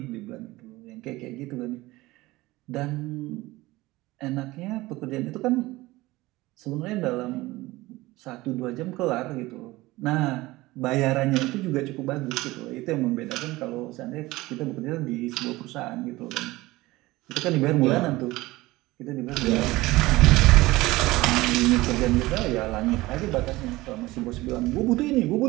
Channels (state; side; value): quieter; left; 19.4 dB